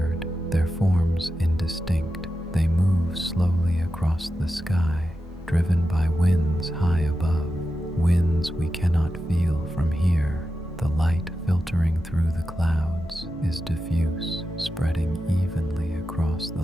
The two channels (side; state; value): both; normal; correlation 0.90